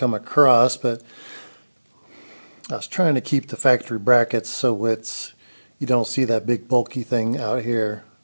across, but I was trying to keep the factory brackets so you don't see that big bulky thing out here.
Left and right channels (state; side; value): inverted; both; correlation -1.00